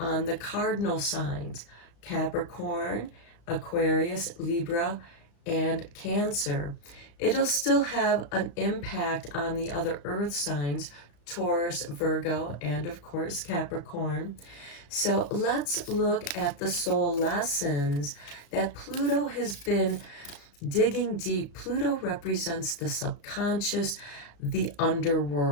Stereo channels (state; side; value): late; right; 35 ms